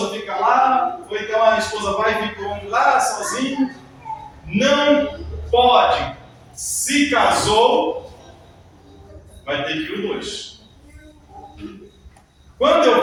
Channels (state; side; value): identical; both; correlation 1.00